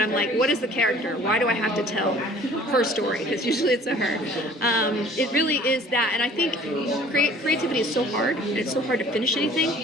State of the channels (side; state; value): both; normal; correlation 0.51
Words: like, what is the character? Why do I have to tell her story? Because usually it's a her. It really is that, and I think creativity is so hard, and it's so hard to finish anything.